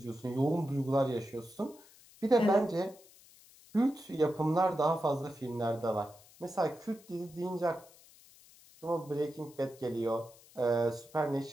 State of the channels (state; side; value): noise; left; hiss, 24 dB below the sound